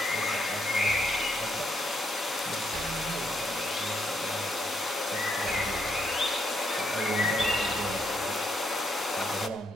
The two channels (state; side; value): normal; both; correlation 0.76